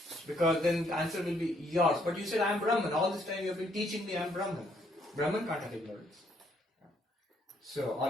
Because then the answer will be yours. But you said, I am Brahman. All this time you have been teaching me I am Brahman. Brahman can't have ignorance. So,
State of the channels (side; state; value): both; normal; correlation 0.70